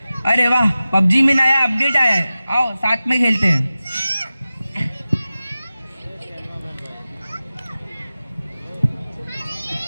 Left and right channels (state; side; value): inverted; both; correlation -0.95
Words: अरे वाह, पबजी में नया अपडेट आया है, आओ साथ में खेलते हैं।